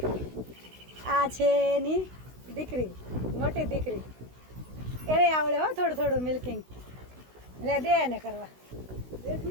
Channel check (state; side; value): late; left; 16 ms